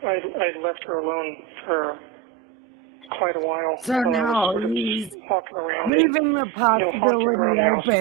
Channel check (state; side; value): drops out; left; at 5.9 s